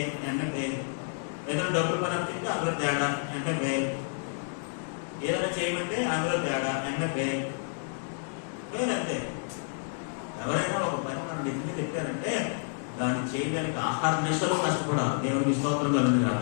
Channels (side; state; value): right; silent; 58 dB below the other